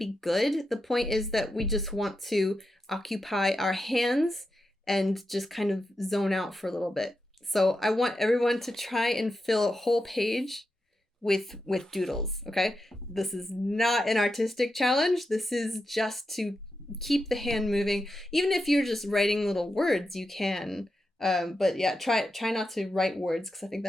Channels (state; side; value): normal; both; correlation 0.88